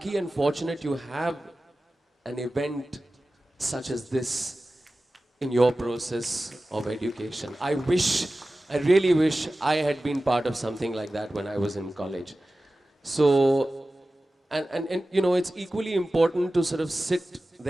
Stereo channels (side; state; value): both; normal; correlation 0.96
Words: and fortunate you have an event such as this in your process of education. I really wish I had been part of something like that when I was in college. So, And you know, it's equally important to sort of sit